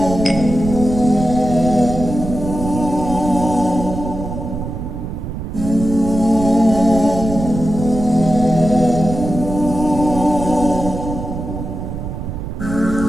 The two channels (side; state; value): right; noise; rumble, 7 dB below the sound